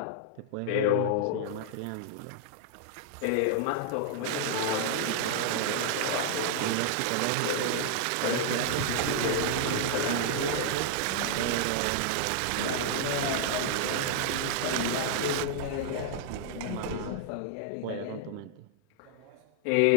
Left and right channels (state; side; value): different; both; correlation -0.01